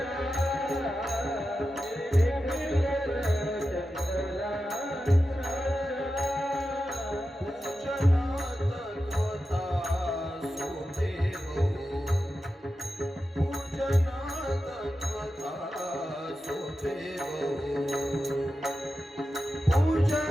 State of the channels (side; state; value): both; normal; correlation 0.91